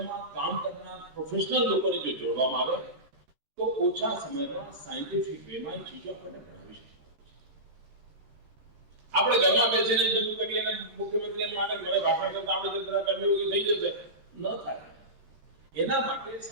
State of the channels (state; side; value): late; left; 13 ms